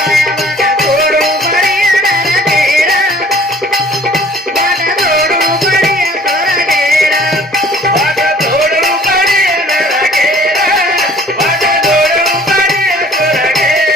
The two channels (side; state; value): both; normal; correlation 0.52